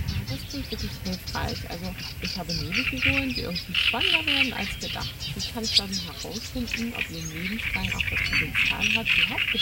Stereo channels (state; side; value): identical; both; correlation 1.00